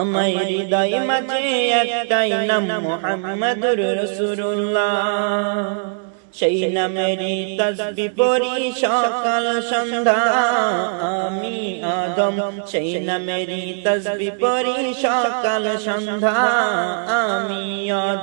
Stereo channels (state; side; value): silent; left; digital silence